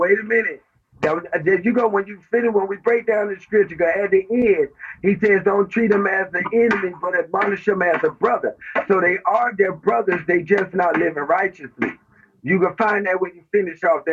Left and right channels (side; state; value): both; identical; correlation 1.00